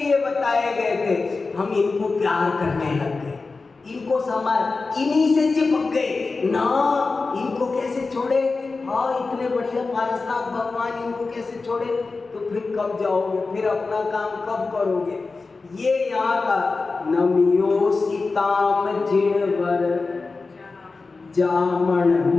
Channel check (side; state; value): right; quieter; 4.0 dB